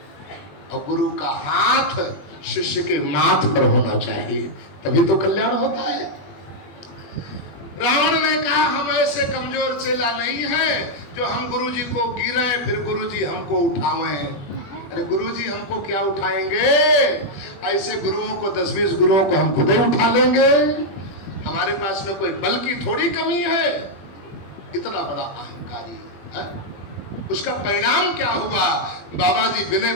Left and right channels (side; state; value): right; late; 21 ms